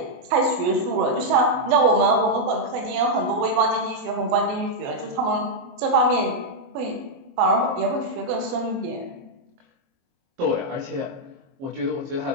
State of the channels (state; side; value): late; left; 22 ms